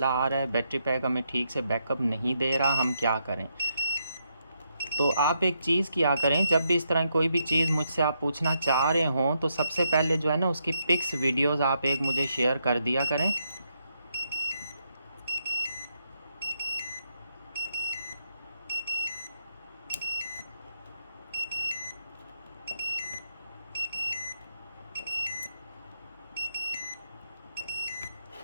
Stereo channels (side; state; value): both; inverted; correlation -0.80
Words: आ रहा है, बैटरी पैक हमें ठीक से बैकअप नहीं दे रहा, हम क्या करें। तो आप एक चीज़ किया करें, जब भी इस तरह कोई भी चीज़ मुझसे आप पूछना चाह रहे हों, तो सबसे पहले जो है ना उसकी पिक्स वीडियोज़ आप एक मुझे शेयर कर दिया करें।